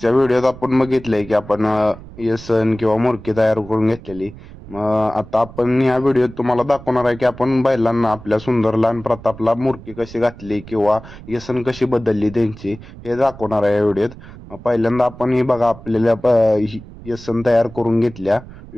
व्हिडिओत आपण बघितलंय की आपण येसन किंवा मुरकी तयार करून घेतलेली. मग आता आपण ह्या व्हिडिओत तुम्हाला दाखवणार आहे की आपण बैलांना आपल्या सुंदरला आणि प्रतापला मुरकी कशी घातली किंवा येसन कशी बदलली त्यांची, हे दाखवणार आहे या व्हिडिओत. पहिल्यांदा आपण ही बघा आपल्याला येसन तयार करून घेतल्या,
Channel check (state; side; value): noise; right; rumble, 17 dB below the sound